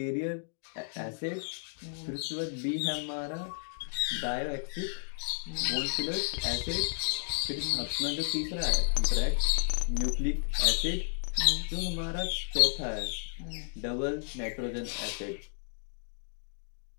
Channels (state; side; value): silent; right; digital silence